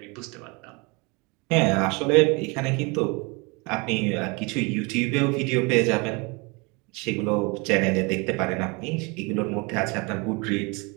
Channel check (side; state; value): left; quieter; 28.9 dB